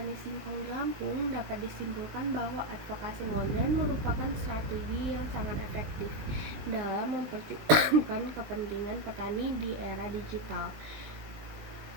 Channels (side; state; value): left; late; 19 ms